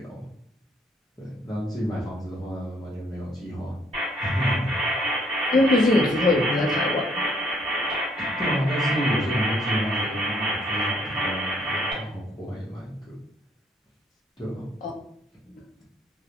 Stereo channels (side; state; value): both; normal; correlation 0.66